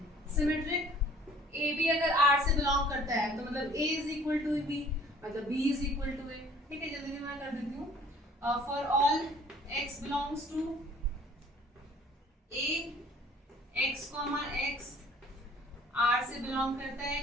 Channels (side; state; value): both; normal; correlation 0.54